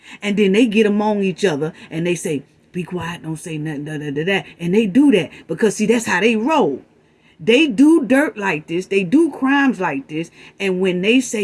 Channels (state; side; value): identical; both; correlation 1.00